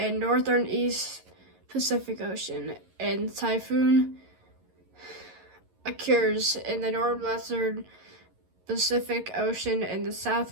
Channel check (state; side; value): late; left; 11 ms